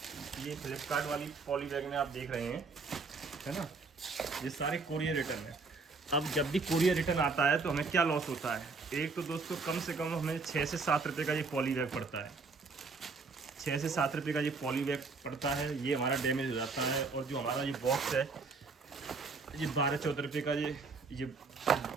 फ्लिपकार्ट वाली पॉली बैग में आप देख रहे हैं, है ना, ये सारे कोरियर रिटर्न है। अब जब भी कोरियर रिटर्न आता है तो हमें क्या लॉस होता है? एक तो दोस्तों कम से कम हमें 6 से 7 रुपये का ये पॉली बैग पड़ता है। 6 से 7 रुपये का ये पॉली बैग पड़ता है। ये हमारा डैमेज हो जाता है। और जो हमारा ये बॉक्स है, ये 12-14 रुपये का ये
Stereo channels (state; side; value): quieter; left; 4.3 dB